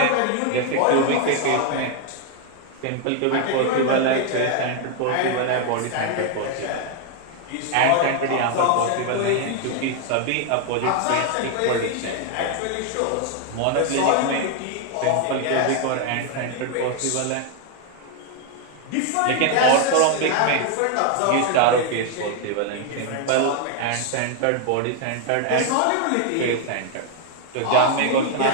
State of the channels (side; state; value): both; different; correlation 0.01